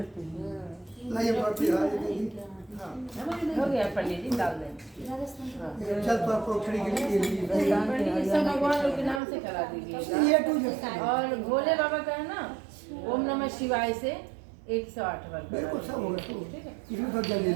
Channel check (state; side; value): drops out; left; at 9.2 s